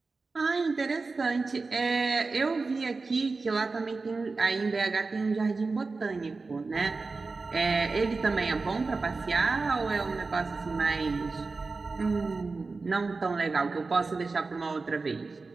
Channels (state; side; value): quieter; left; 4.0 dB